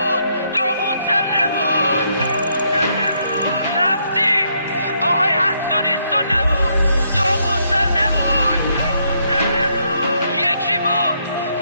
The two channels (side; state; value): both; inverted; correlation -0.74